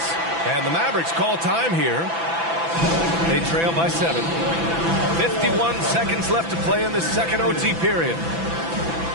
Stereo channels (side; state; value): left; late; 6.0 ms